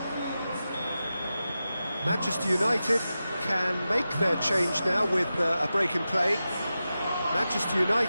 Manchester United can make their change now with a break in play. Manchester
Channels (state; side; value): inverted; both; correlation -0.92